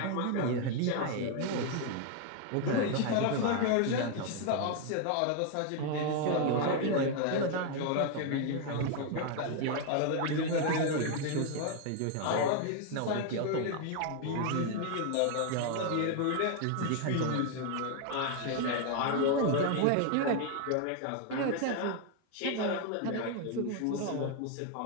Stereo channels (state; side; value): different; both; correlation 0.00